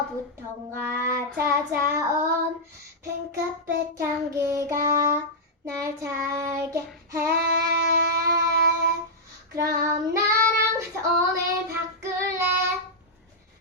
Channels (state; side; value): normal; both; correlation -0.08